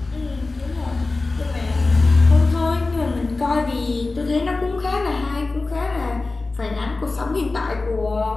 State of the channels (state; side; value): quieter; right; 3.4 dB